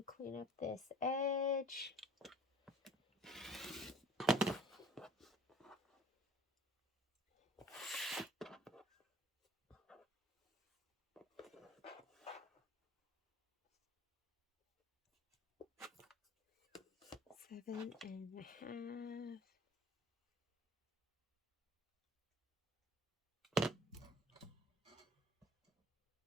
clean up this edge. Seven and a half.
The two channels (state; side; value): normal; both; correlation 0.46